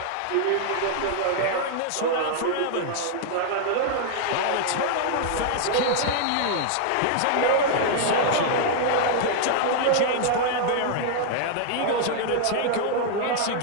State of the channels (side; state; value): both; different; correlation -0.01